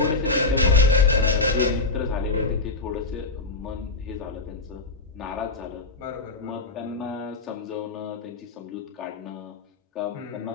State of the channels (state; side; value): quieter; right; 3.7 dB